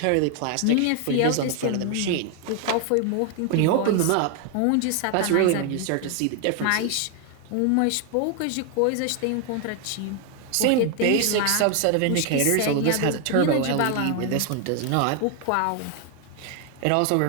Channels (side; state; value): both; different; correlation 0.00